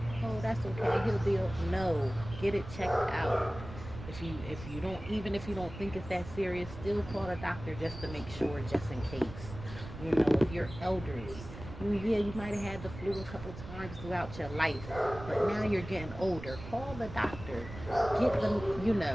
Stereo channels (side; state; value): right; noise; rumble, 12 dB below the sound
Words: Oh, that's okay. He'll be okay. No, get it checked out. If you don't, even if you don't think it's that serious, still call a doctor just to make sure, just in case. You know, if you're elderly, yeah, you might have had the flu a couple times throughout your life, but now you're getting older. Call the doctor. Get them,